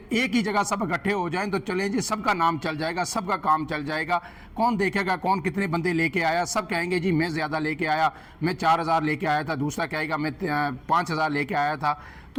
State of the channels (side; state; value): both; identical; correlation 1.00